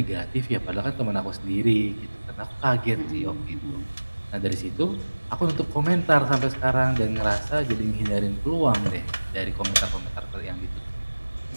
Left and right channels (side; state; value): both; inverted; correlation -1.00